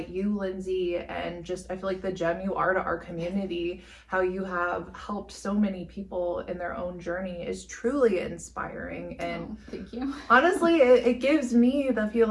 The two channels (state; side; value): identical; both; correlation 1.00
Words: you, Lindsey, and just, I feel like the gem you are to our community, how you have helped so many people in their own journey is truly inspiring. And thank you. Honestly, it gives me the